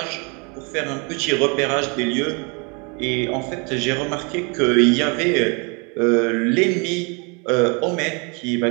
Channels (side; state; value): left; quieter; 32.6 dB